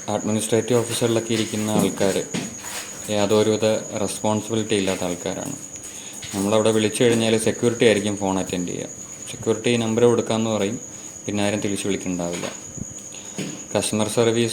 അഡ്മിനിസ്ട്രേറ്റീവ് ഓഫീസറിലൊക്കെ ഇരിക്കുന്ന ആൾക്കാർ യാതൊരുവിധ റെസ്പോൺസിബിലിറ്റി ഇല്ലാത്ത ആൾക്കാരാണ്. നമ്മളവിടെ വിളിച്ചു കഴിഞ്ഞാൽ സെക്യൂരിറ്റി ആയിരിക്കും ഫോൺ അറ്റൻഡ് ചെയ്യുക. സെക്യൂരിറ്റി നമ്പർ കൊടുക്കാമെന്ന് പറയും, പിന്നെ ആരും തിരിച്ച് വിളിക്കുന്നുണ്ടാവില്ല. കസ്റ്റമർ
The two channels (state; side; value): identical; both; correlation 1.00